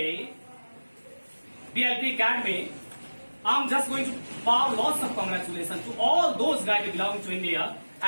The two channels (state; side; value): inverted; both; correlation -1.00